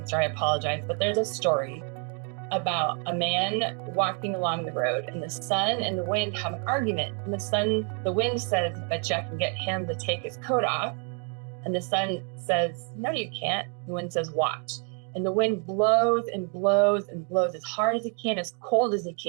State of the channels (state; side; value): quieter; left; 36.3 dB